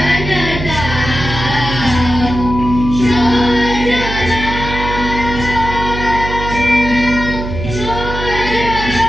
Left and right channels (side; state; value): right; noise; hum, 6 dB below the sound